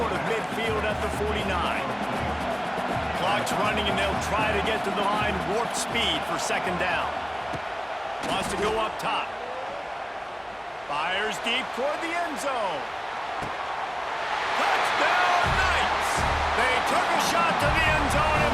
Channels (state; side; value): identical; both; correlation 1.00